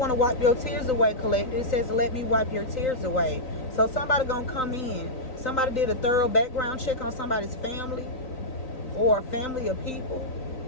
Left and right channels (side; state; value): right; late; 3.9 ms